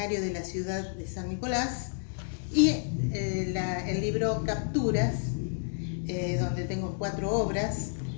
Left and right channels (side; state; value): right; silent; digital silence